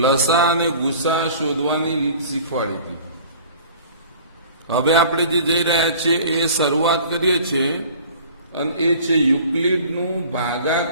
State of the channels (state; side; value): inverted; both; correlation -0.47